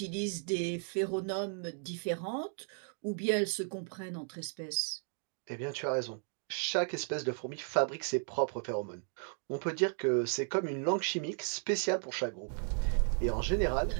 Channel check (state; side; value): silent; left; 55 dB below the other